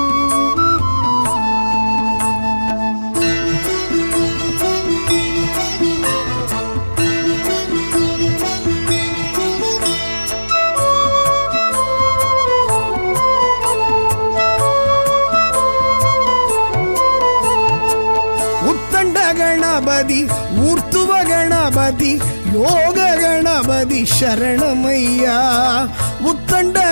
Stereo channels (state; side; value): inverted; both; correlation -1.00